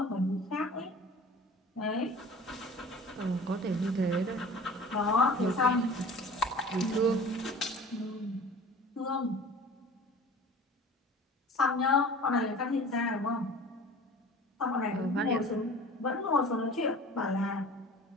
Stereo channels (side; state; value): both; normal; correlation 0.42